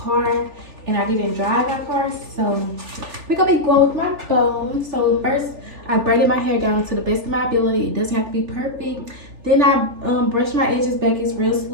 and I didn't drive my car. So we're gonna be going with my phone. So first I braided my hair down to the best of my ability. It doesn't have to be perfect. Then I brushed my edges back, it's real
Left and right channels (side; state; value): left; late; 3.4 ms